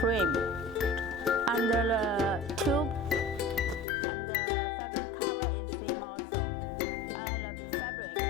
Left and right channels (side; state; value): right; drops out; at 3.9 s